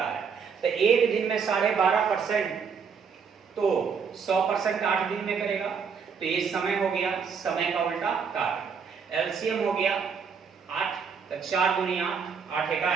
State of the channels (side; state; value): left; quieter; 6.1 dB